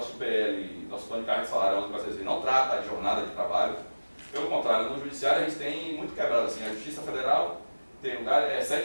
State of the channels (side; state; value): both; inverted; correlation -1.00